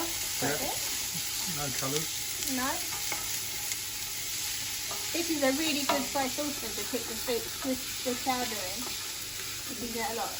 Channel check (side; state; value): both; identical; correlation 1.00